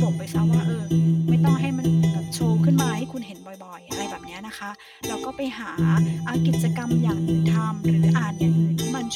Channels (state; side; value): identical; both; correlation 1.00